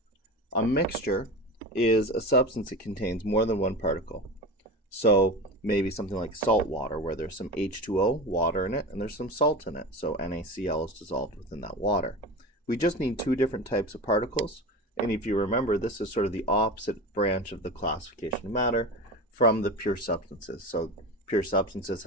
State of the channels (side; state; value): both; normal; correlation 0.28